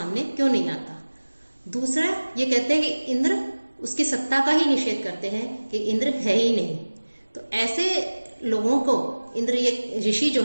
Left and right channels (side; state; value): both; inverted; correlation -1.00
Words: क्यों नहीं आता। दूसरा ये कहते हैं कि इंद्र, उसकी सत्ता का ही निषेध करते हैं कि इंद्र है ही नहीं। तो ऐसे लोगों को इंद्र, ये ऋषि जो